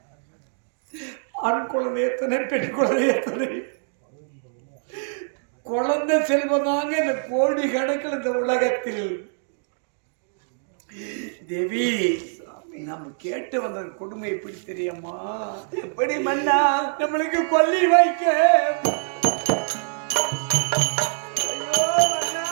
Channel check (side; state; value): left; silent; digital silence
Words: ஆண் குழந்தை எத்தனை, பெண் குழந்தை எத்தனை, குழந்தை செல்வம் தாங்க இந்த கோடி கணக்கில் இந்த உலகத்தில். தேவி, நம்ம கேட்டு வந்த கொடுமை எப்படி தெரியுமா? எப்படி மன்னா நம்மளுக்கு கொல்லி வைக்க